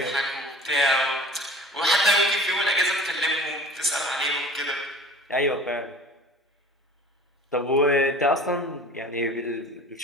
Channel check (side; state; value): both; normal; correlation 0.43